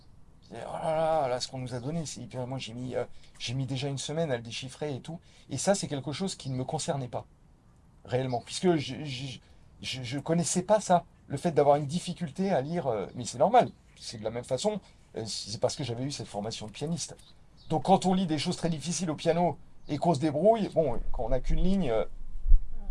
ils disaient, oh là là, là, ce qu'on nous a donné, c'est hyper. Moi, j'ai mis déjà une semaine à le déchiffrer et tout. Et ça, c'est quelque chose qui ne me concernait pas, réellement, puisque je connaissais pas ça. Le fait d'avoir une difficulté à lire, mais c'est normal. C'est de la même façon, c'est parce que j'avais eu cette formation de pianiste. Donc quand on lit des choses très difficiles au piano et qu'on se débrouille, bon, quand on n'a qu'une ligne,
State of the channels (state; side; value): identical; both; correlation 1.00